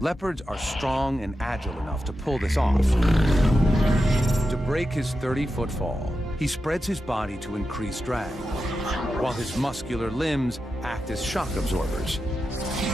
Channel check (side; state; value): both; normal; correlation 0.90